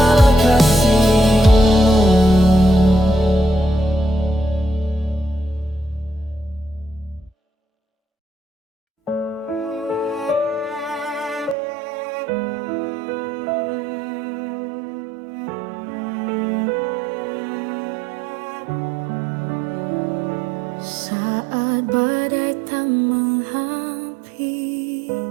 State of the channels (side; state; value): left; drops out; at 11.6 s